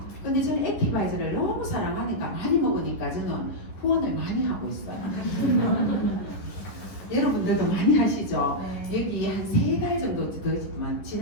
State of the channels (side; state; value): right; late; 10 ms